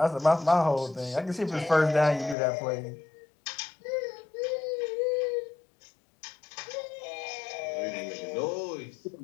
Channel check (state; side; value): drops out; right; at 2.4 s